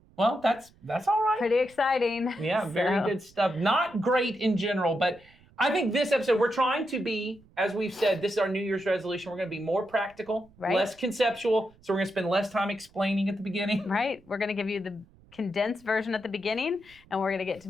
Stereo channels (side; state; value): right; noise; rumble, 28 dB below the sound